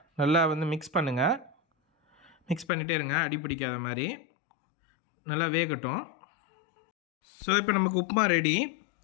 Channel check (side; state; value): right; drops out; at 2.7 s